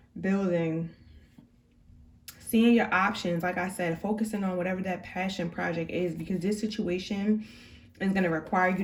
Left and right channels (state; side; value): identical; both; correlation 1.00